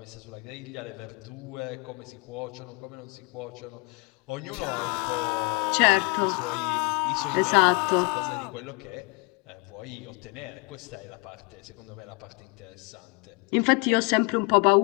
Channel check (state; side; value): quieter; right; 31.0 dB